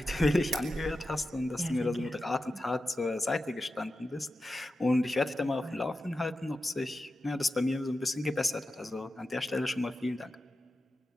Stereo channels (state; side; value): normal; both; correlation 0.91